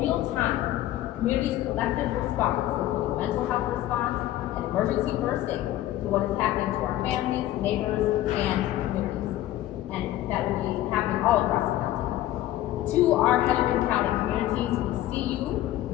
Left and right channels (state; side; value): quieter; right; 14.2 dB